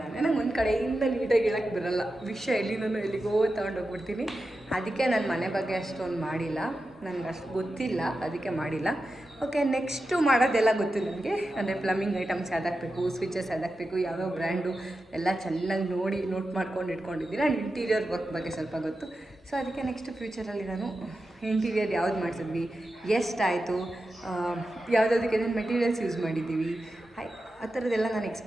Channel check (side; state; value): both; normal; correlation 0.91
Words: ನಂಗೆ ಒಂದು ಕಡೆಯಿಂದ ನೀಟಾಗಿ ಹೇಳೋಕ್ಕೆ ಬರೋಲ್ಲ. ವಿಷಯ ಎಲ್ಲಿಗೋ ತೊಗೊಂಡೋಗ್ಬಿಡ್ತೀನಿ. ಅದಕ್ಕೆ ನಾನು ಮನೆ ಬಗ್ಗೆ ಅಷ್ಟೊಂದು ಮಾಡಿಲ್ಲ, ನನಗೆ ಅಷ್ಟು ಗೊತ್ತಿಲ್ಲ, ಅದಕ್ಕೆ ಮಾಡಿಲ್ಲ. ಓಕೆ, ನೆಕ್ಸ್ಟು ಮಾಡೋದೆಲ್ಲ ಗೊತ್ತು ನನಗೆ. ಅಂದರೆ ಪ್ಲಂಬಿಂಗ್ ಐಟಮ್ಸ್ ಯಾವ್ದಾಕಬೇಕು, ಸ್ವಿಚಸ್ ಯಾವ್ದಾಕಬೇಕು, ಯಾವ್ಯಾವ ಬ್ರ್ಯಾಂಡು ಎಲ್ಲ ಚೆನ್ನಾಗಿ ನೋಟ್ ಮಾಡ್ಕೊಂಡು ಇಟ್ಕೊಂಡಿದ್ದೀನಿ. ಆ್ಯಂಡ್ ಇಂಟೀರಿಯರ್ ವರ್ಕ್ ಬಗ್ಗೆ ಸ್ವಲ್ಪ ಗೊತ್ತು. ಸೊ ಅದಕ್ಕೆ ನೆಕ್ಸ್ಟ್ ಫ್ಯೂಚರಲ್ಲಿ ನಾನು ಇಂಟೀರಿಯರ್ ಯಾವ್ದು ಮಾಡಿಸಿದ್ವಿ, ಎಷ್ಟಾಯಿತು, ಯಾವುದಕ್ಕೆ ಏನೇನು ಮೆಟೀರಿಯಲ್ಸ್ ಯೂಸ್ ಮಾಡಿದ್ದೀವಿ, ಆ ಥರದ್ದೆಲ್ಲ ನಾನು